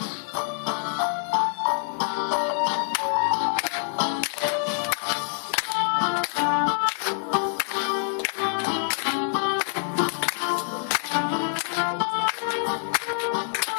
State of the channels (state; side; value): silent; right; digital silence